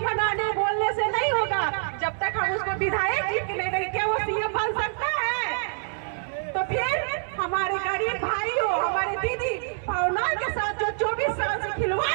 बनाने बोलने से नहीं होगा। जब तक हम उसको विधायक जी के नहीं देंगे, क्या वो सीएम बन सकता है? तो फिर हमारे गरीब भाइयों, हमारे दीदी भावना के साथ जो 24 साल से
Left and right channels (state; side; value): silent; left; 61 dB below the other